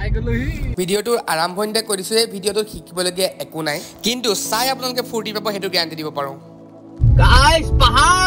গ'লোহি ভিডিঅ'টোৰ আৰম্ভণিতে কৈ দিছো এই ভিডিঅ'টোত শিকিবলগীয়া একো নাই কিন্তু চাই আপোনালোকে ফূৰ্তি পাব সেইটো গেৰাণ্টি দিব পাৰো গাইছ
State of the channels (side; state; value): both; identical; correlation 1.00